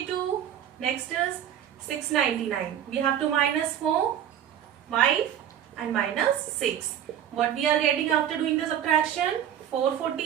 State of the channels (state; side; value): quieter; left; 10.1 dB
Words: Next is 699. We have to minus 4, 5 and minus 6. What we are getting after doing the subtraction?